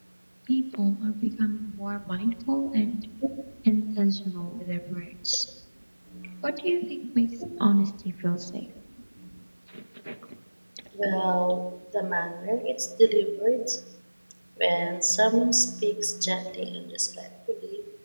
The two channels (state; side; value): inverted; both; correlation -1.00